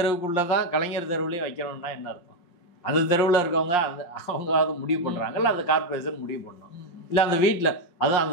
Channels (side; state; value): right; late; 5.6 ms